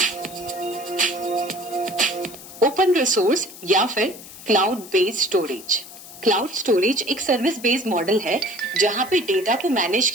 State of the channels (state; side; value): noise; left; hiss, 16 dB below the sound